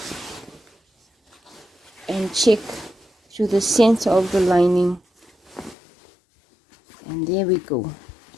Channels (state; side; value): drops out; right; at 5.8 s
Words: and check through the center of the lining, and there we go.